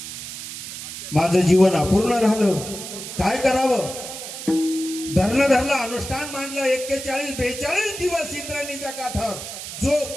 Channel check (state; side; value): noise; right; hiss, 9 dB below the sound